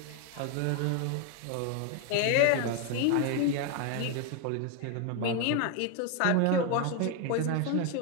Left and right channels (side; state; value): both; different; correlation 0.01